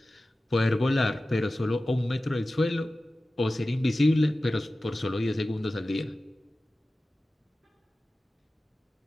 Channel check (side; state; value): both; normal; correlation 0.95